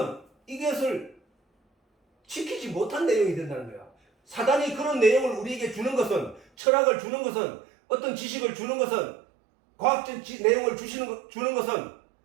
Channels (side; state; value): left; drops out; at 6.5 s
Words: 이것을 지키지 못한 내용이 된다는 거야. 사단이 그런 내용을 우리에게 주는 것은, 철학을 주는 것은, 어떤 지식을 주는 것은, 과학적 내용을 주는 것은